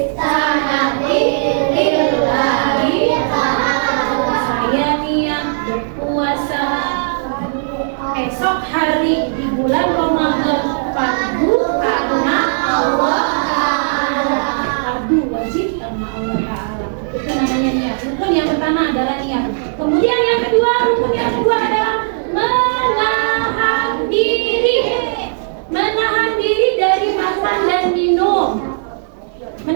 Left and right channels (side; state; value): left; silent; 69 dB below the other